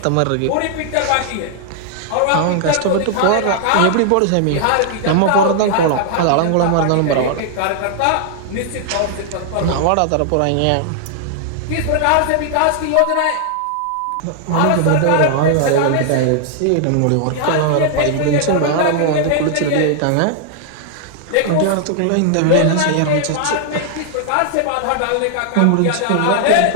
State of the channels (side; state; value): both; different; correlation 0.00